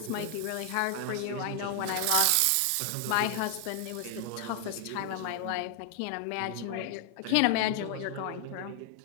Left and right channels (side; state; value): both; different; correlation 0.00